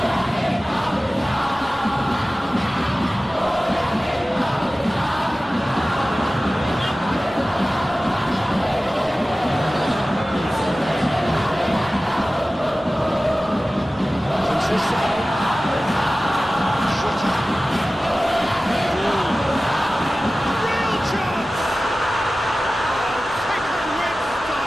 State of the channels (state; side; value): normal; both; correlation 0.96